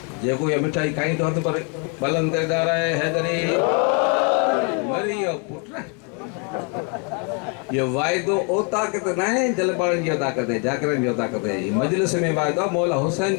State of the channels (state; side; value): quieter; right; 34.8 dB